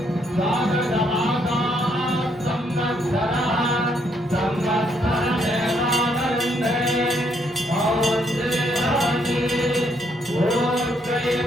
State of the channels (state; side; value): normal; both; correlation 0.72